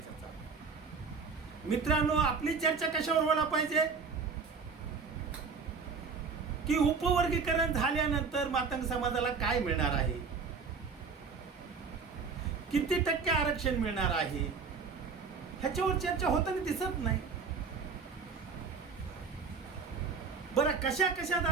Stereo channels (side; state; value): left; quieter; 5.2 dB